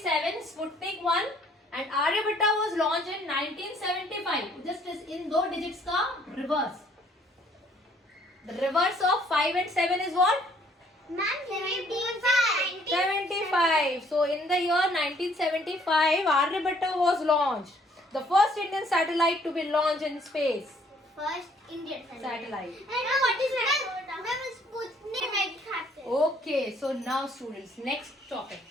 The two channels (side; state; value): both; normal; correlation 0.62